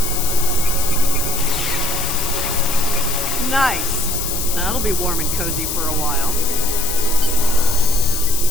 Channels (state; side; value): noise; left; hiss, 3 dB below the sound